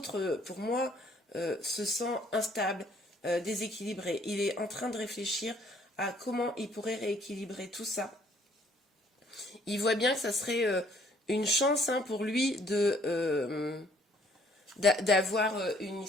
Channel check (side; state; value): both; normal; correlation 0.62